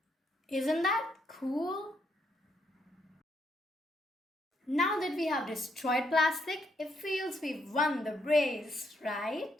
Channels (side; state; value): both; normal; correlation 0.75